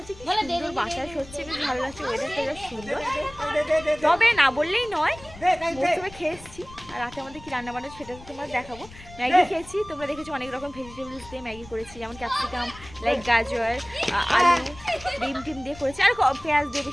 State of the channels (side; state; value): left; noise; rumble, 19 dB below the sound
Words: কি সুন্দর বাতাস হচ্ছে, বেশ ভালো লাগছে, ওয়েদারটা বেশ সুন্দর। তবে না বললেই নয়, মৌসুমে খেয়ে এসেছি। আর রাতে আমাদের কি রান্না বান্না সেটা তোমরা দেখাবো। ম্যাগি খেয়েছি, তোমরা দেখেছো অনেক রকম ভেজিটেবলস দিয়ে ম্যাগি করেছি, যেমন ক্যাপসিকাম, লাইক গাজর, আলু, ডিম টিম দিয়ে করেছি, আর পেঁয়াজ দিয়ে